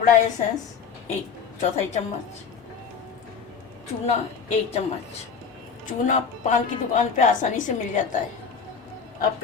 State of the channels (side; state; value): right; quieter; 6.0 dB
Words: एसेंस 1/4 चम्मच, चूना 1 चम्मच। चूना पान की दुकान पे आसानी से मिल जाता है। अब